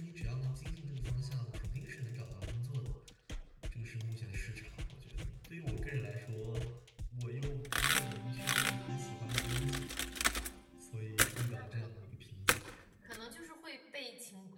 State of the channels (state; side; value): identical; both; correlation 1.00